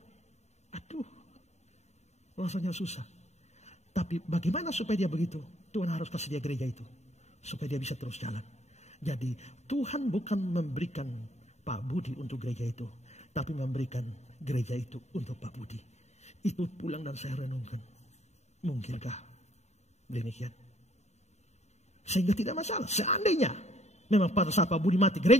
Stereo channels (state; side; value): late; right; 0.32 ms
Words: Aduh, rasanya susah. Tapi bagaimana supaya dia begitu? Tuhan harus kasih dia gereja itu. Supaya dia bisa terus jalan. Jadi Tuhan bukan memberikan Pak Budi untuk gereja itu. Tapi memberikan gereja itu untuk Pak Budi. Itu pulang dan saya renungkan. Mungkinkah demikian? Sehingga tidak masalah. Seandainya memang pada saat Pak Budi mati,